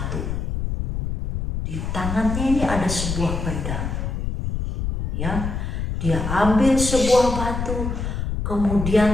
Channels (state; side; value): noise; left; rumble, 3 dB below the sound